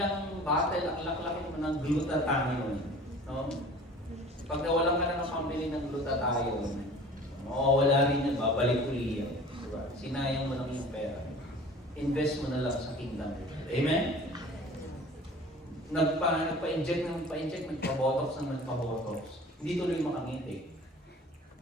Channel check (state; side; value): normal; both; correlation 0.44